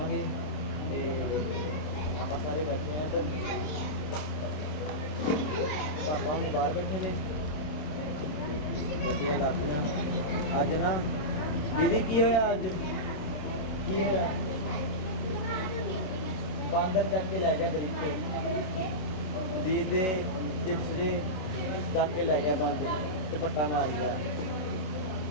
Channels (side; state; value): right; late; 27 ms